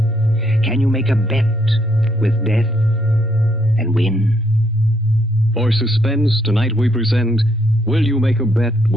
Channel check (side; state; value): both; normal; correlation 0.71